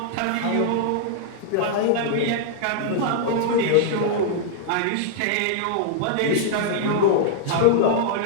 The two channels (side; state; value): both; different; correlation -0.01